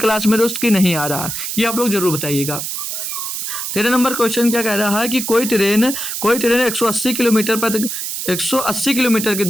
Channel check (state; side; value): noise; right; hiss, 4 dB below the sound